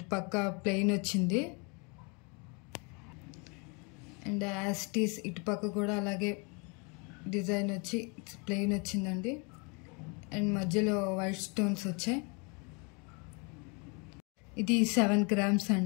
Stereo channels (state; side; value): quieter; right; 32.4 dB